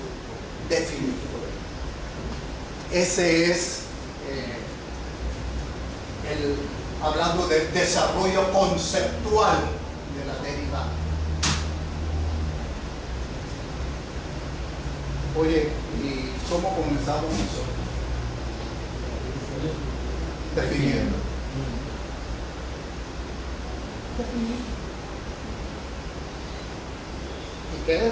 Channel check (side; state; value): both; identical; correlation 1.00